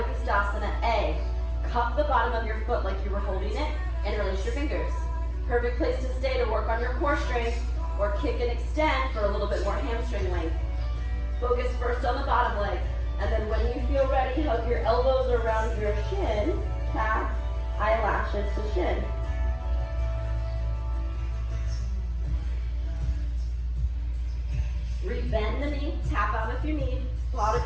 A. Cup the bottom of your foot like you were holding it and release your fingers. Perfect place to stay to work on your core strength or kick and extend for a little bit more hamstring length. Focus first on the bottom leg, and then when you feel ready, hug your elbows around your shin, calf, eyelashes to shin. Rebend the knee, tap out if you need.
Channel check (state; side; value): identical; both; correlation 1.00